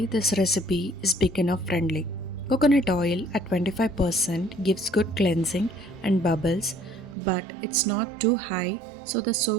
this recipe is beginner friendly. Coconut oil at 25% gives good cleansing and bubbles, but it's not too high so the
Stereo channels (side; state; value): left; drops out; at 7.2 s